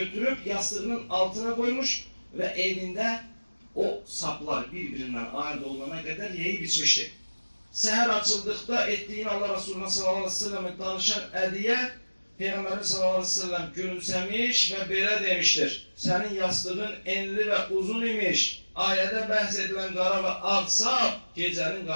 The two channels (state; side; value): inverted; both; correlation -1.00